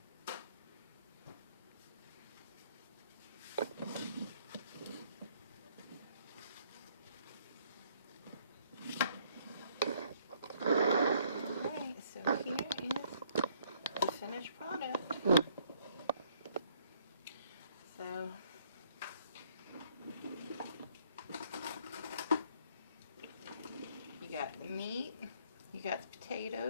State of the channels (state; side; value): inverted; both; correlation -0.65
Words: Alright, so here is the finished product. So you got the meat, you got the